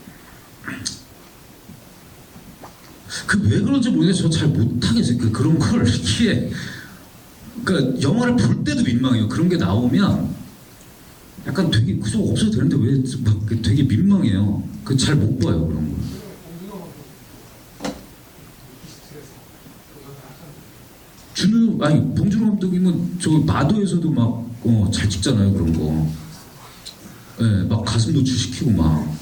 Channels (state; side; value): identical; both; correlation 1.00